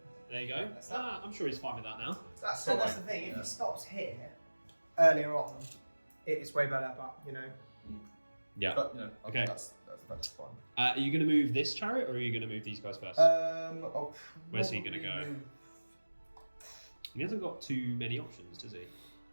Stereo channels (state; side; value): inverted; both; correlation -1.00